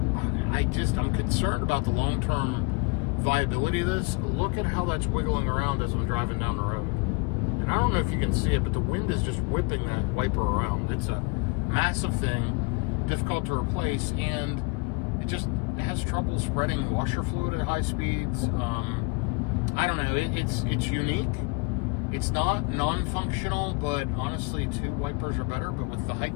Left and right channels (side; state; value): right; quieter; 29.7 dB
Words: I'm concerned about the long-term viability of this. Look at how that's wiggling around as I'm driving down the road. And I don't know if you can see it, but the wind is just whipping that wiper around. It's a massive thing, difficult to replace, and it has trouble spreading washer fluid at high speeds. I don't know. It's unique. It's not non-functional, but honestly, 2 wipers are better. But with the height